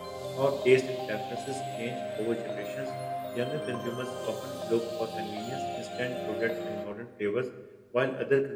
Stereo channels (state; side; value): identical; both; correlation 1.00